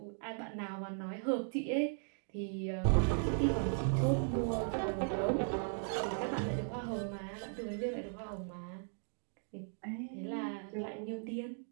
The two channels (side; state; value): left; silent; 53 dB below the other